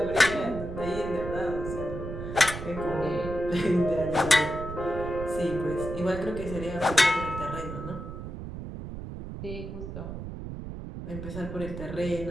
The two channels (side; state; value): right; noise; rumble, 8 dB below the sound